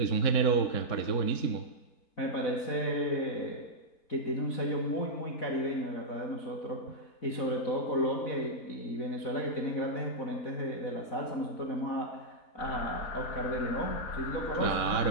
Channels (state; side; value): late; right; 4.0 ms